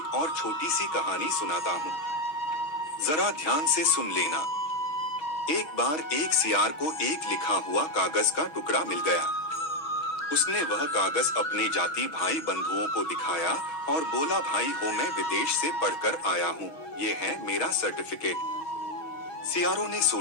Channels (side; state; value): right; late; 6.3 ms